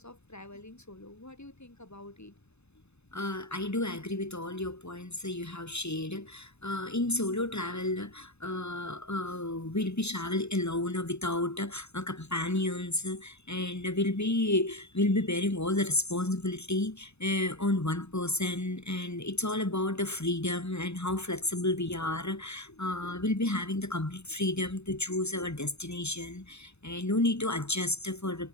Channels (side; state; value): right; late; 0.81 ms